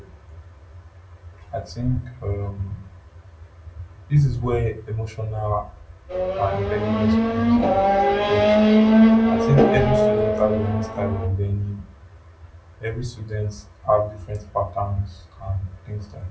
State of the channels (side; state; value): both; identical; correlation 1.00